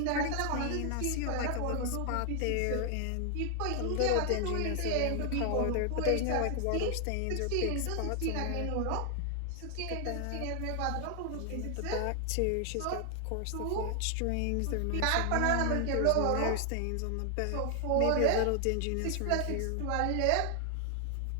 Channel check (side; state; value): both; different; correlation 0.00